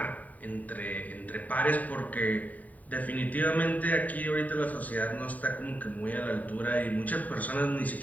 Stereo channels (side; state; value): right; late; 0.074 ms